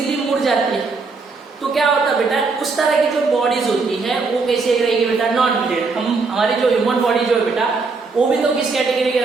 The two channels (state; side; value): quieter; left; 4.3 dB